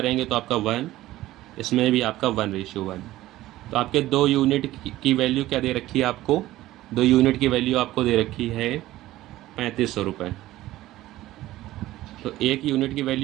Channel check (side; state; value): left; quieter; 15.8 dB